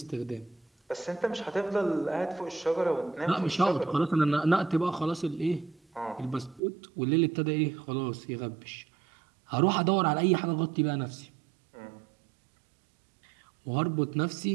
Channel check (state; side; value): drops out; left; at 6.6 s